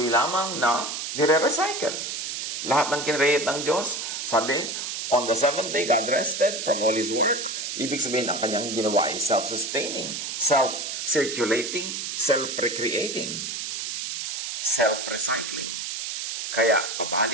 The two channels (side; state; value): right; noise; hiss, 4 dB below the sound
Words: lamang na nire-recycle. Lahat ng kinreate ng Diyos, sabi, on the seventh day, God rested from all His work. Ibig sabihin, ang kanyang ginawa ay self-sustaining, self-circulating, self-recreating, self-recycling. Kaya,